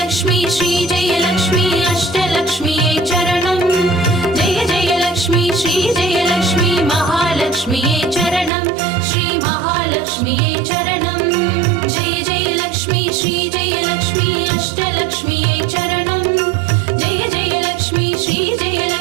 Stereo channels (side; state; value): left; drops out; at 8.5 s